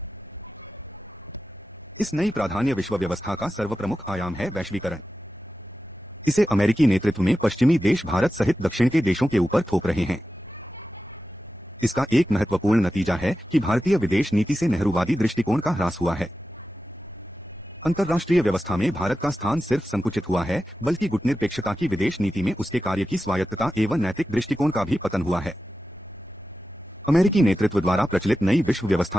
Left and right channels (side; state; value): both; normal; correlation 0.92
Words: इस नई प्राधान्य विश्व व्यवस्था का सर्वप्रमुख आयाम है वैश्वीकरण। इसे अमेरिकी नेतृत्व में पश्चिमी देश भारत सहित दक्षिण के देशों के ऊपर थोप रहे हैं। इसका एक महत्वपूर्ण नतीजा है कि भारतीय विदेश नीति से नेहरूवादी दृष्टिकोण का ह्रास हुआ है। अंतर्राष्ट्रीय व्यवस्था में भारत का स्थान सिर्फ संकुचित हुआ है बल्कि गुटनिरपेक्षता की विदेश नीति में उसके कार्य की स्वायत्तता एवं नैतिक दृष्टिकोण का भी पतन हुआ है। अमेरिकी नेतृत्व द्वारा प्रचलित नई विश्व